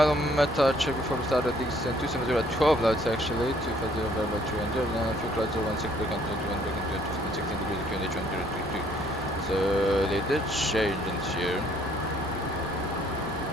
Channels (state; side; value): normal; both; correlation 0.63